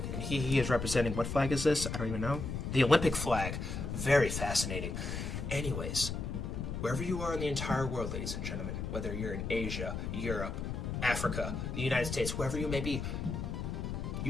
and he is representing, what flag is this? I don't even know. The Olympic flag. Very fascinating. Anyways, wherever you are in the entire world, ladies and gentlemen, whether you're in Asia, Europe, Africa, the United States, wherever you may be,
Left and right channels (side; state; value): left; noise; rumble, 4 dB below the sound